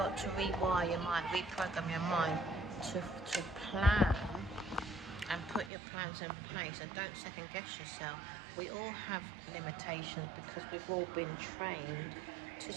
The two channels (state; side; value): drops out; left; at 5.7 s